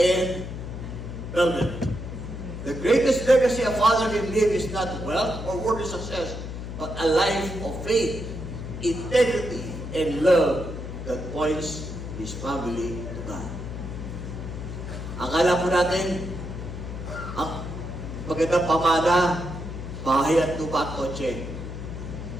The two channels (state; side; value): noise; left; hum, 8 dB below the sound